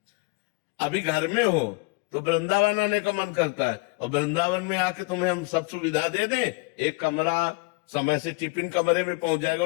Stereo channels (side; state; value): right; quieter; 28.7 dB